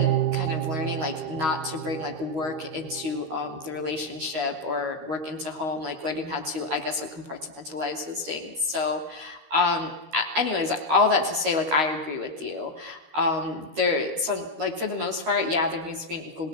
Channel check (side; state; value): left; late; 13 ms